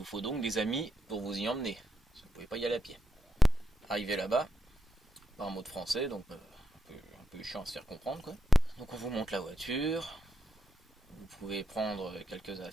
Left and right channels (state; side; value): normal; both; correlation 0.84